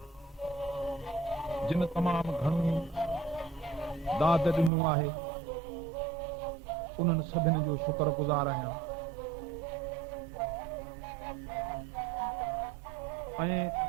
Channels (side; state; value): left; drops out; at 4.7 s